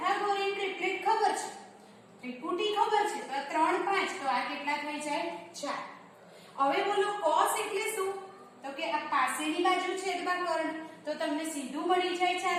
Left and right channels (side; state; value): both; identical; correlation 1.00